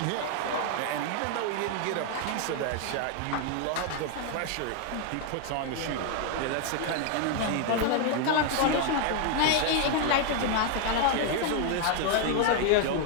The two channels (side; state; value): both; different; correlation 0.00